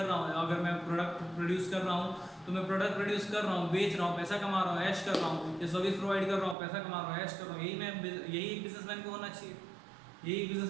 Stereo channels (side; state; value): left; drops out; at 6.6 s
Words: रहा हूँ, अगर मैं प्रोडक्ट प्रोड्यूस कर रहा हूँ तो मैं प्रोडक्ट प्रोड्यूस कर रहा हूँ, बेच रहा हूँ, पैसा कमा रहा हूँ, ऐश कर रहा हूँ, या सर्विस प्रोवाइड कर रहा हूँ, पैसा कमा रहा हूँ, ऐश कर रहा हूँ। यही एक बिजनेसमैन को होना चाहिए, यही